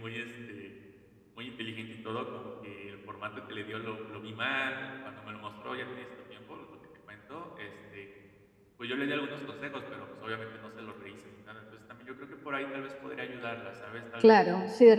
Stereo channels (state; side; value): identical; both; correlation 1.00